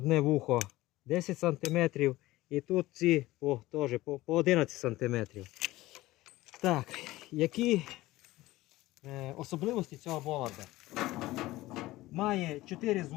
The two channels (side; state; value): right; quieter; 17.7 dB